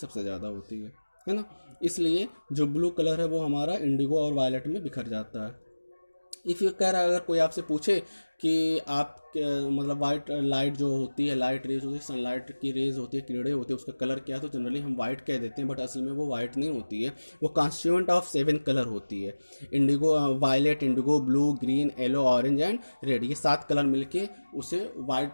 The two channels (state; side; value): inverted; both; correlation -1.00